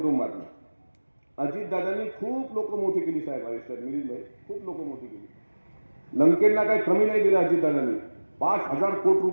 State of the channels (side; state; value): both; inverted; correlation -1.00